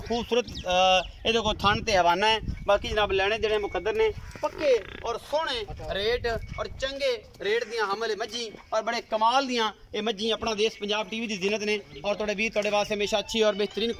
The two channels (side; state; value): both; identical; correlation 1.00